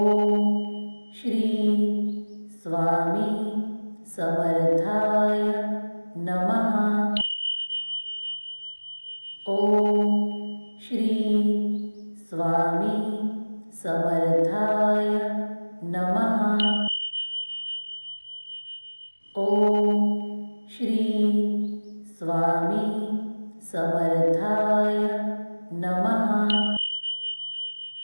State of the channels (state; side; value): inverted; both; correlation -1.00